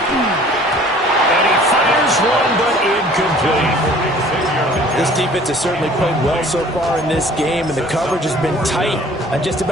And This defense has certainly played well so far in this game, and the coverage has been tight on just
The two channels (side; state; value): both; normal; correlation 0.51